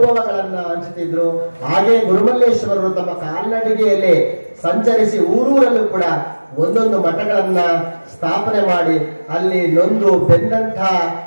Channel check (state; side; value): inverted; both; correlation -1.00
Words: ಹಂಚುತ್ತಿದ್ರು. ಹಾಗೆ ಗುರುಮಲ್ಲೇಶ್ವರರು ತಮ್ಮ ಕಾಲ್ನಡಿಗೆಯಲ್ಲಿ ಸಂಚರಿಸಿ ಊರೂರಲ್ಲೂ ಕೂಡ ಒಂದೊಂದು ಮಠಗಳನ್ನ ಸ್ಥಾಪನೆ ಮಾಡಿ ಅಲ್ಲಿ ನೊಂದು ಬೆಂದಂಥ